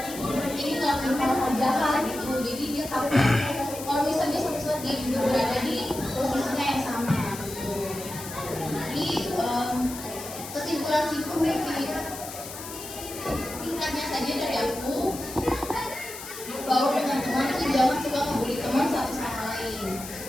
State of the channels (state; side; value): noise; left; hiss, 11 dB below the sound